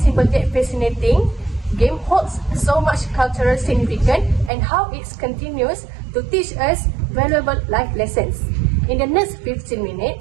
simple yet fascinating game holds so much cultural significance and how it continues to teach us valuable life lessons. In the next 15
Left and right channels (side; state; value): left; drops out; at 4.5 s